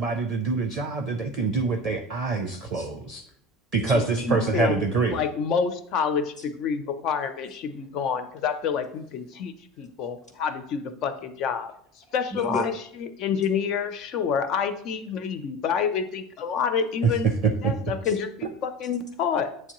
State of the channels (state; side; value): normal; both; correlation 0.32